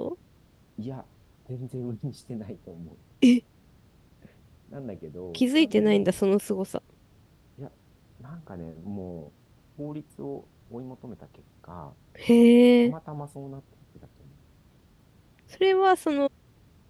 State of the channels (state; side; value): identical; both; correlation 1.00